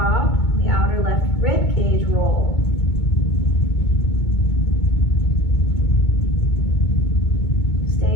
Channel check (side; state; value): right; late; 2.2 ms